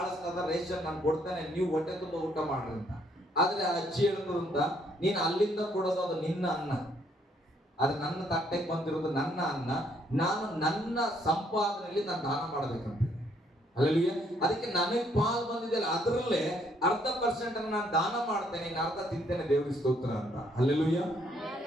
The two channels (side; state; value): both; normal; correlation 0.68